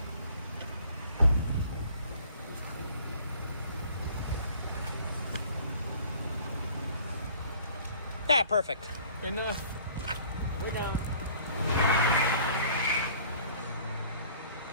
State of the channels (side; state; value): both; inverted; correlation -0.53